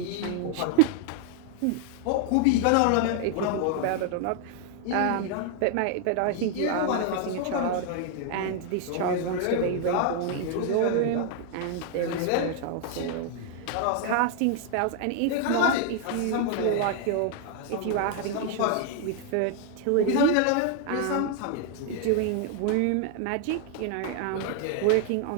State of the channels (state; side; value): different; both; correlation 0.00